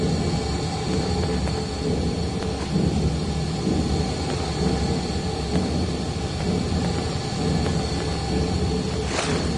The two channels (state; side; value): identical; both; correlation 1.00